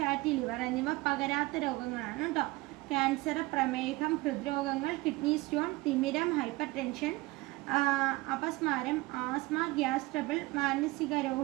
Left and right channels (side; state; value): left; quieter; 21.3 dB